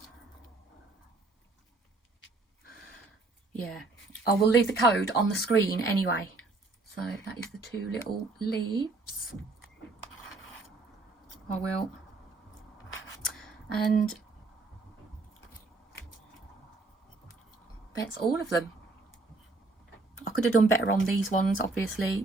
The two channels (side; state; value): left; quieter; 3.5 dB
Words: yeah, I will leave the code on the screen anyway. So that is the 2 little leaves. I will. And that's all of them. I could have done better on these ones,